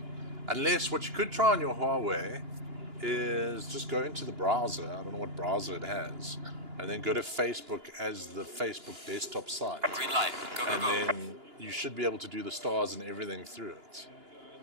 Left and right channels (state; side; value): late; left; 2.9 ms